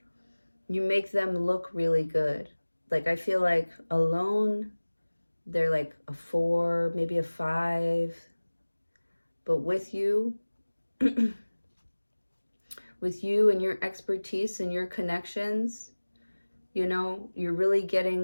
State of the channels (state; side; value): inverted; both; correlation -1.00